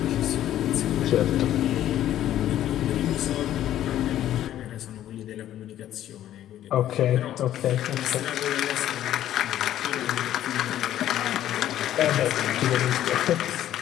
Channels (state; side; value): quieter; right; 12.2 dB